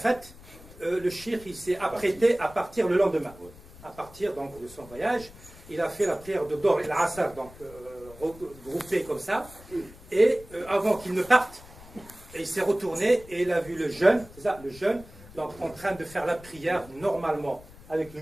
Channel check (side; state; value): left; noise; rumble, 20 dB below the sound